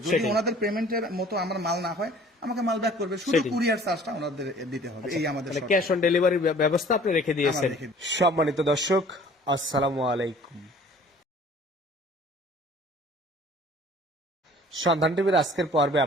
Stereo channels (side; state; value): both; normal; correlation 0.50